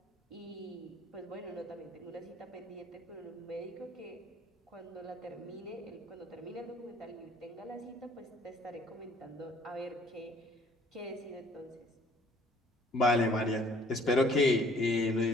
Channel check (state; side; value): normal; both; correlation 0.58